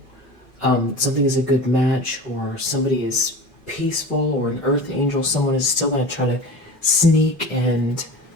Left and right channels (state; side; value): normal; both; correlation 0.33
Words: something is a good match, or somebody is peaceful, or an earth angel. Someone is still going to try to sneak and...